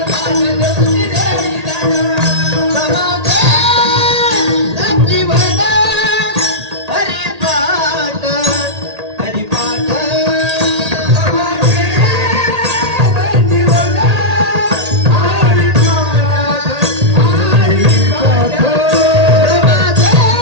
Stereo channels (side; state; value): left; late; 1.8 ms